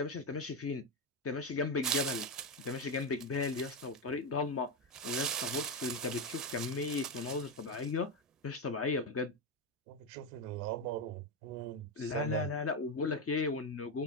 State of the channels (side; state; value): both; normal; correlation 0.09